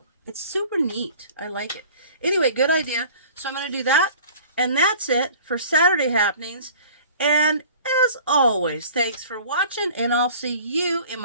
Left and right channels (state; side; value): inverted; both; correlation -0.47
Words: It's super neat. I like it. Anyway, good idea. So I'm going to do that. And that's it for Saturday happenings. And as always, thanks for watching, and I'll see you in